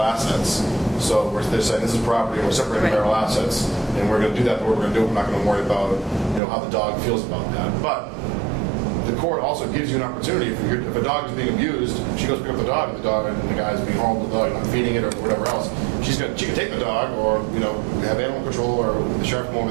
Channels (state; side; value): drops out; left; at 6.4 s